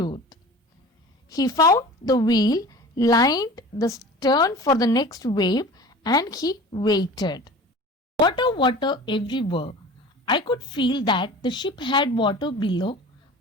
He found the wheel, lined the stern for the next wave and he waited. Water, water everywhere. I could feel that the ship had water below,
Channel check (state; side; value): normal; both; correlation 0.39